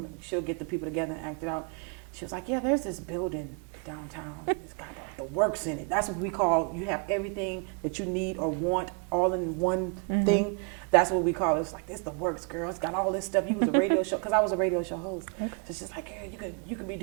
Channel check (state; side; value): quieter; left; 36.3 dB